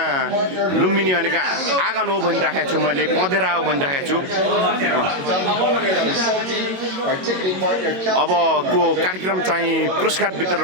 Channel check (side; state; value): left; late; 22 ms